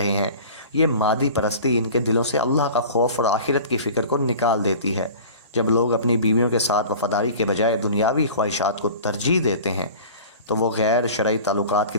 ہیں۔ یہ مادی پرستی ان کے دلوں سے اللہ کا خوف اور آخرت کی فکر کو نکال دیتی ہے۔ جب لوگ اپنی بیویوں کے ساتھ وفاداری کے بجائے دنیاوی خواہشات کو ترجیح دیتے ہیں تو وہ غیر شرعی تعلقات کی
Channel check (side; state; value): both; inverted; correlation -0.40